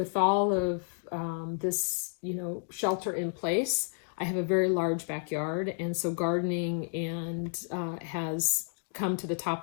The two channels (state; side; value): silent; right; 57 dB below the other